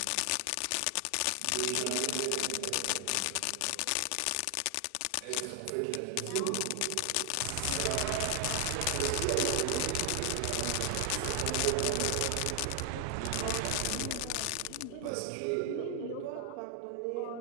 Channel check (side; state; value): both; different; correlation 0.00